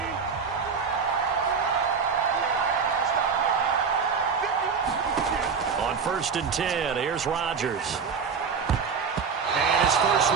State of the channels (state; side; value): quieter; left; 5.8 dB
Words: First and 10. Here's Rodgers. And his first